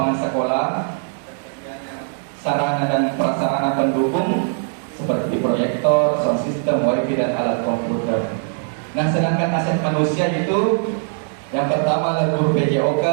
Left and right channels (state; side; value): silent; left; digital silence